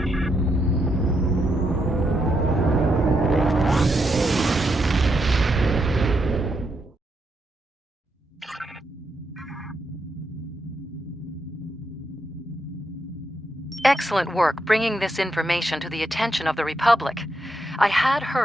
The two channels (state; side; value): normal; both; correlation 0.81